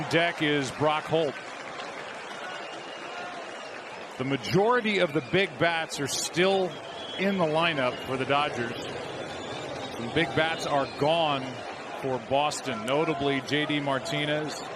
deck is Brock Holt. The majority of the big bats are still in the lineup for the Dodgers. Some big bats are gone for Boston, notably J.D. Martinez,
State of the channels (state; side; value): identical; both; correlation 1.00